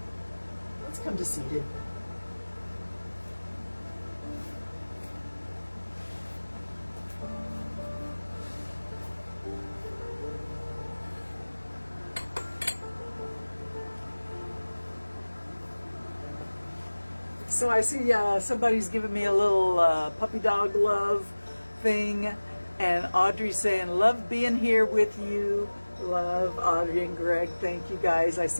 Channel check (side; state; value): both; inverted; correlation -1.00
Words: Let's come to seated. So I see somebody's giving me a little puppy dog love thing, and Audrey's saying, love being here with you. Love Audrey and Greg, thank you guys. I